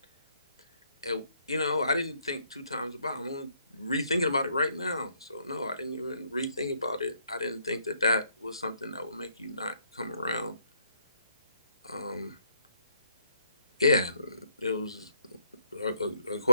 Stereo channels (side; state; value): both; inverted; correlation -0.70